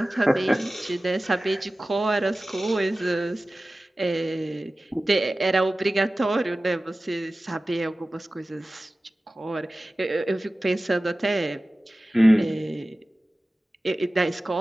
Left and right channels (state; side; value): normal; both; correlation 0.96